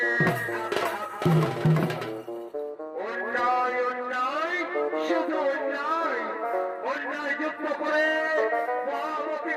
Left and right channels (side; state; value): both; identical; correlation 1.00